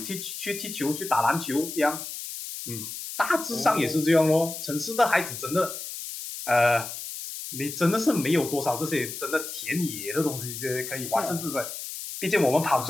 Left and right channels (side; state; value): left; noise; hiss, 8 dB below the sound